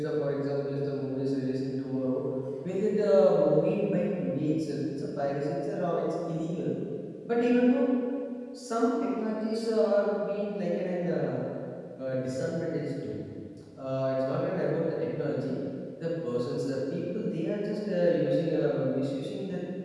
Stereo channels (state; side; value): identical; both; correlation 1.00